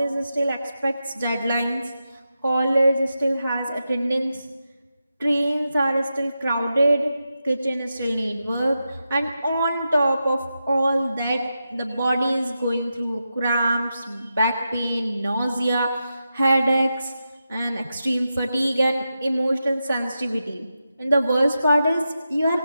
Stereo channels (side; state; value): both; inverted; correlation -0.89